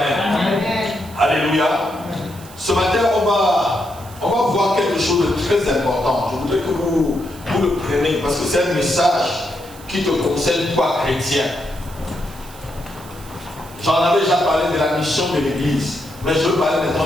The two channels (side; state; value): right; noise; hiss, 20 dB below the sound